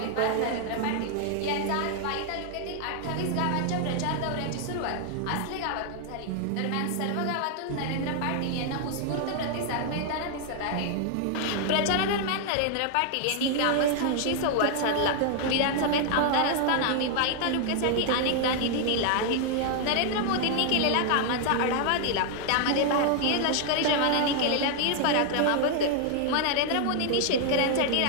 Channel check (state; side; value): different; both; correlation 0.00